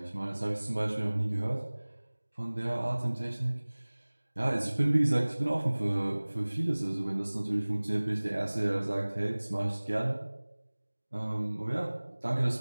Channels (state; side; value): inverted; both; correlation -1.00